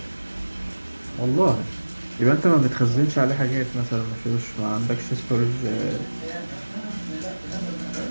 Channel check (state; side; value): inverted; both; correlation -1.00